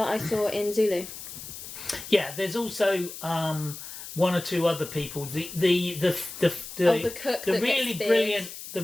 I saw in Zulu. Yeah, there's also one or two other people. The cook that really gets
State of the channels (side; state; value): left; noise; hiss, 11 dB below the sound